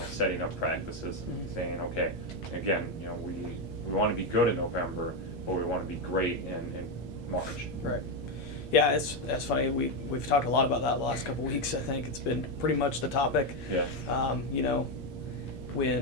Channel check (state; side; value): late; right; 8.5 ms